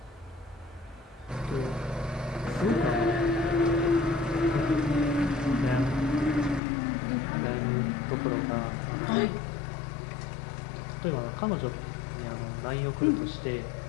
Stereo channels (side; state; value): right; drops out; at 6.6 s